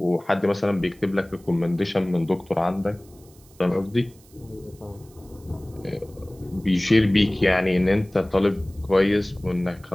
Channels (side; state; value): right; noise; hiss, 28 dB below the sound